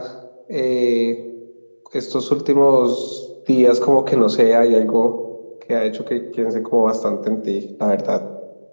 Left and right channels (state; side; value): inverted; both; correlation -1.00